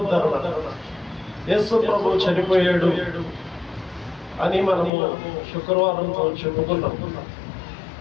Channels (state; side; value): drops out; right; at 4.9 s